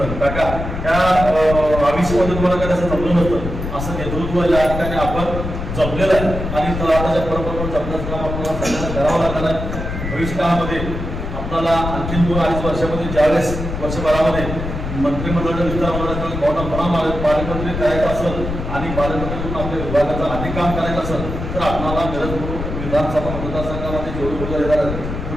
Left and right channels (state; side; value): noise; left; rumble, 5 dB below the sound